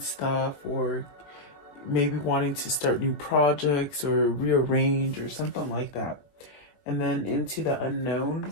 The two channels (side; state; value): right; late; 21 ms